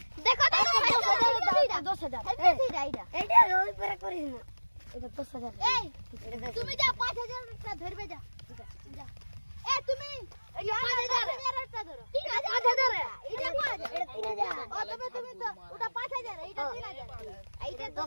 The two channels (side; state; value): both; inverted; correlation -1.00